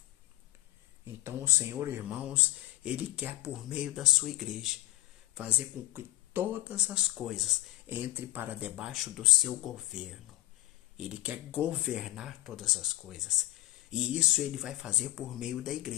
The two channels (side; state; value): right; quieter; 17.7 dB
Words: Então, o Senhor, irmãos, ele quer, por meio da sua igreja, fazer com que todas as coisas entrem para debaixo do seu governo. Ele quer governar todas as coisas. E isso ele vai fazer por meio da